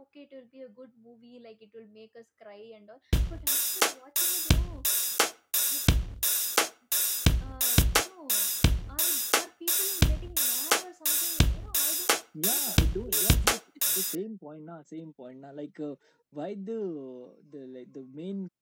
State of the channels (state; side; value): identical; both; correlation 1.00